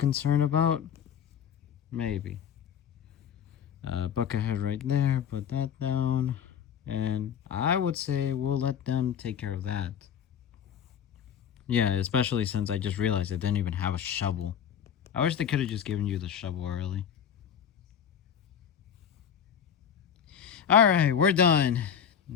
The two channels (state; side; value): quieter; right; 8.3 dB